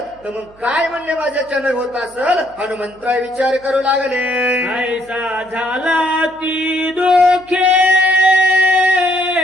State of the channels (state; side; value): noise; right; hum, 28 dB below the sound